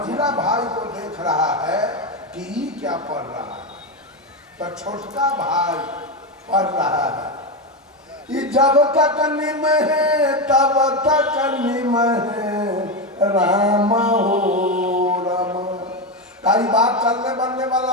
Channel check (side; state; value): both; normal; correlation 0.12